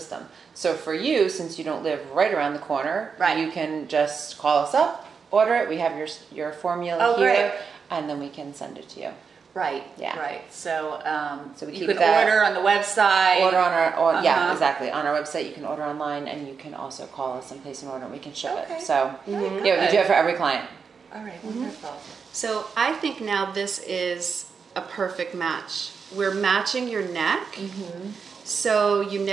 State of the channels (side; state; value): left; quieter; 5.7 dB